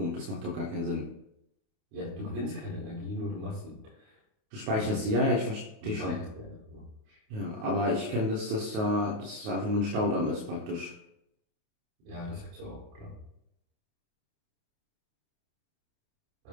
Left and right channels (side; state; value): left; late; 28 ms